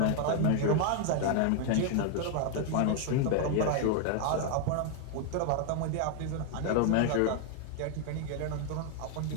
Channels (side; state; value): both; different; correlation 0.00